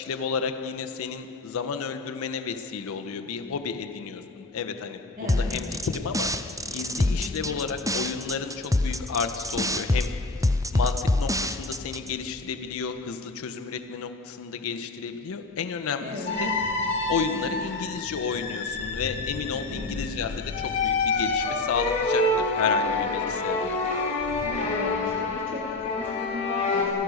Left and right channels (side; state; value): right; quieter; 3.2 dB